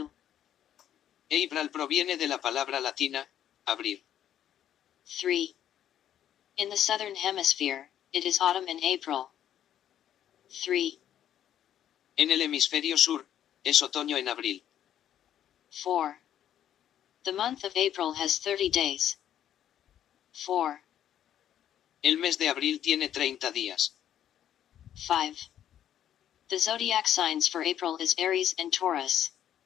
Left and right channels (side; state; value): right; quieter; 10.6 dB